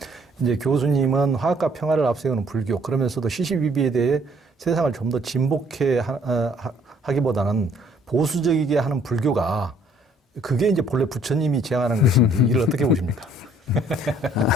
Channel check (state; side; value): normal; both; correlation 0.62